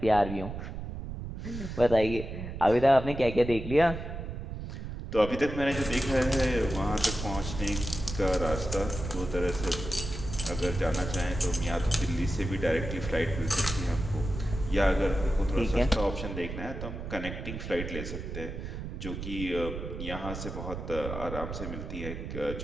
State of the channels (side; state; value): right; noise; rumble, 7 dB below the sound